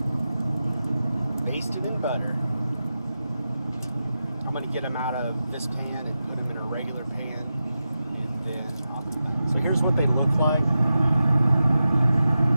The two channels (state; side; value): inverted; both; correlation -0.91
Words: basted in butter. I'm going to get them out of this pan and put them in a regular pan, and then so here's what they look like.